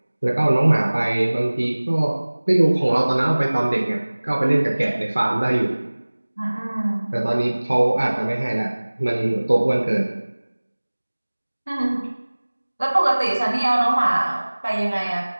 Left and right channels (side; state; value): both; inverted; correlation -1.00